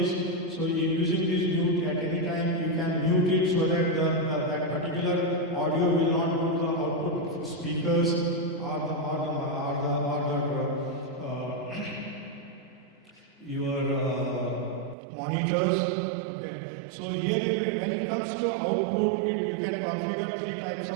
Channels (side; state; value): left; drops out; at 15.0 s